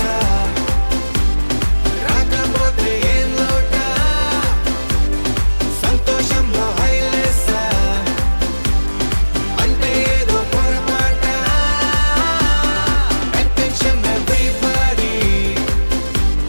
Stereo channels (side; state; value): both; inverted; correlation -1.00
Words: రాకపోతే ఏం లోట సంతోషంలో హైలేస అంటే ఏదో పొరపాట అటెన్షన్ ఎవ్రీబడీ